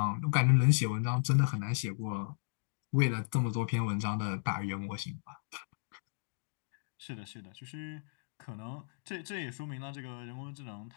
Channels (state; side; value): silent; right; digital silence